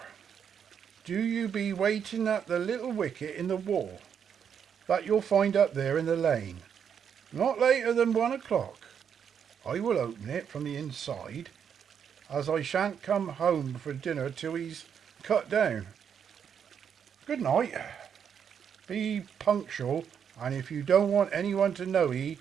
Do you be waiting at the little wicket in the wall that you'll find up there in the lane. Not later than 1 o'clock. I will open it from the inside, as I shan't come home for dinner till he's cut down. Good night. Be punctual And if you don't want anyone to know ye,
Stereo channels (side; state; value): left; quieter; 7.8 dB